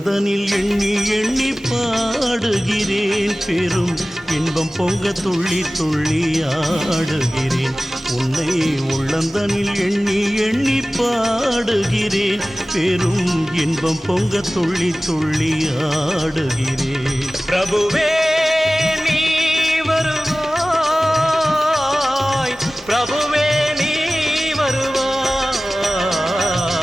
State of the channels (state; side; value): normal; both; correlation 0.97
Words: எண்ணி எண்ணி பாடுகிறேன், பெரும் இன்பம் பொங்க துள்ளி துள்ளி ஆடுகிறேன். உன்னை உள்ளந்தனில் எண்ணி எண்ணி பாடுகிறேன், பெரும் இன்பம் பொங்க துள்ளி துள்ளி ஆடுகிறேன். பிரபுவே நீ வருவாய், பிரபுவே நீ வருவாய்.